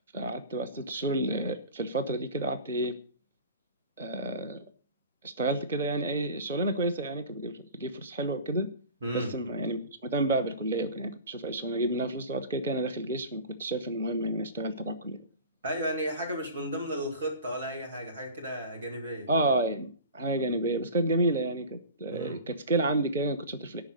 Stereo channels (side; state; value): both; inverted; correlation -0.36